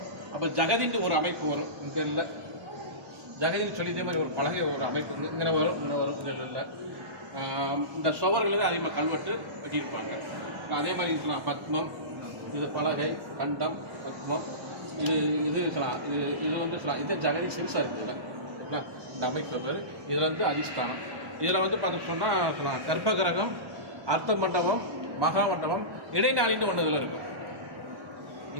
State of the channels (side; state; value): left; late; 1.1 ms